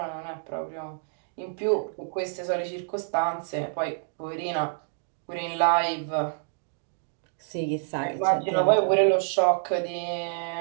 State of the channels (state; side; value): silent; left; digital silence